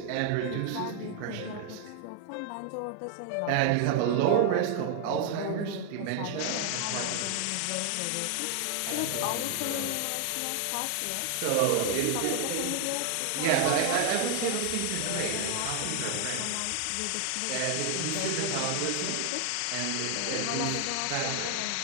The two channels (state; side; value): different; both; correlation 0.00